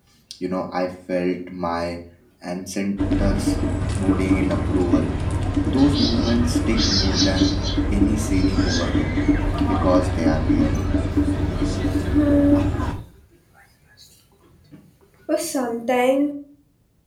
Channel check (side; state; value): both; identical; correlation 1.00